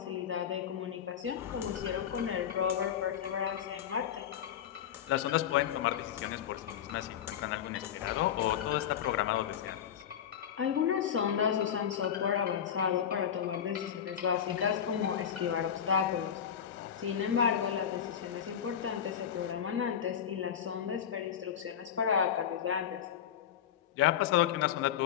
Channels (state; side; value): quieter; right; 9.1 dB